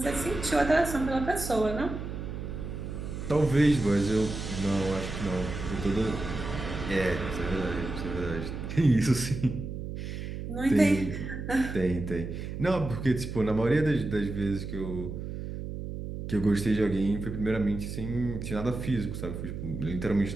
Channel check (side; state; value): right; noise; hum, 7 dB below the sound